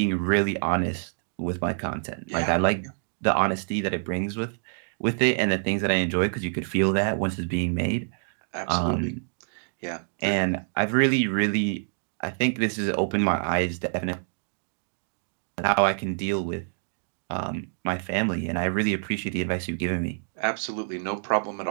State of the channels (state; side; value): silent; left; digital silence